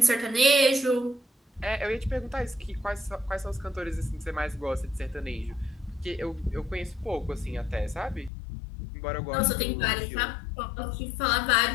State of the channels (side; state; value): right; drops out; at 8.3 s